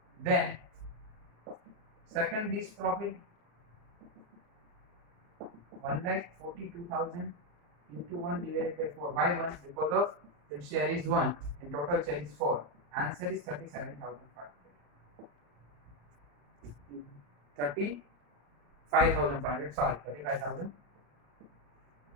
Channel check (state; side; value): late; left; 34 ms